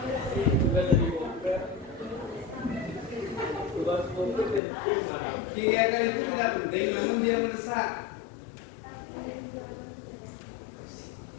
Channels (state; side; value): drops out; right; at 4.6 s